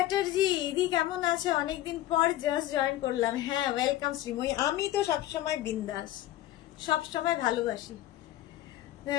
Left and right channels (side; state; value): right; quieter; 14.1 dB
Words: দিদি কেমন আছে? অনেকদিন পর জাস্ট জয়েন করলাম। হ্যাঁ, ওয়েলকাম শ্রীময়ী। আমি তো সবসময় বিন্দাস, সবসময় ভালোবাসি।